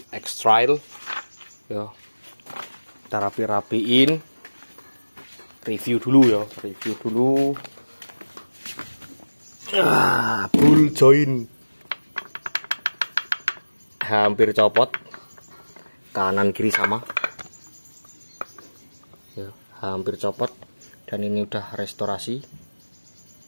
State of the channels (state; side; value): inverted; both; correlation -1.00